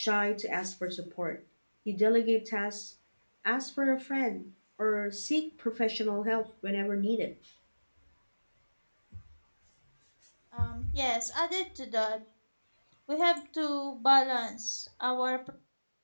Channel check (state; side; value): inverted; both; correlation -1.00